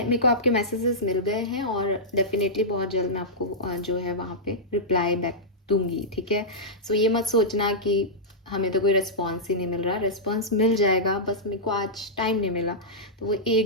को आपके मैसेजेस मिल गए हैं और डेफिनेटली बहुत जल्द मैं आपको जो है वहाँ पे रिप्लाई बैक दूंगी, ठीक है। सो ये मत सोचना कि हमें तो कोई रिस्पॉन्स ही नहीं मिल रहा, रिस्पॉन्स मिल जाएगा, बस मेरे को आज टाइम नहीं मिला, तो वो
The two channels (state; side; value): normal; both; correlation -0.12